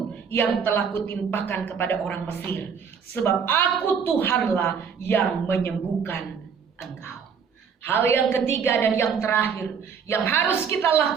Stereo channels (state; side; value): quieter; left; 6.6 dB